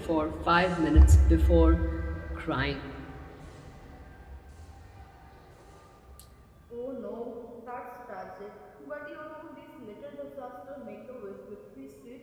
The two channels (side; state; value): both; identical; correlation 1.00